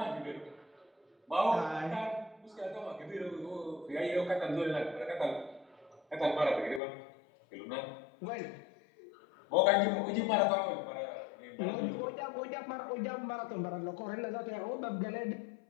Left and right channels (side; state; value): right; drops out; at 6.8 s